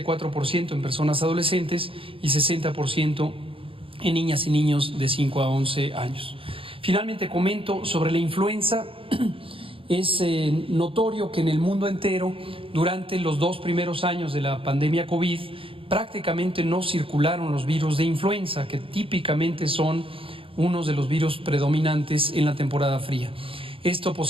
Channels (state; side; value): late; left; 0.26 ms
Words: en personas adolescentes y 60% en niñas y niños de 5 a 11 años. Finalmente comento sobre la influenza. Es notorio que en el mundo entero, durante los 2 primeros años de la pandemia COVID, prácticamente no circularon los virus de influenza, que típicamente son unos de los virus predominantes en la temporada fría. Esto